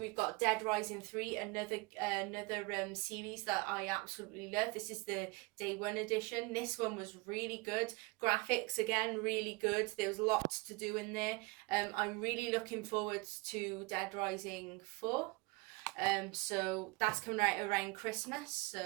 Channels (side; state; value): left; quieter; 25.6 dB